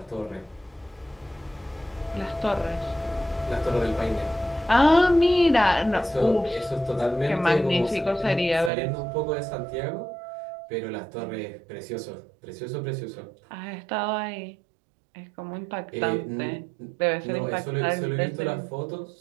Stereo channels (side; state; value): left; drops out; at 8.7 s